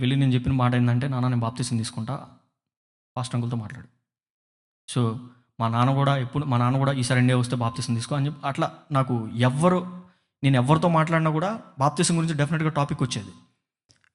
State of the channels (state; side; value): identical; both; correlation 1.00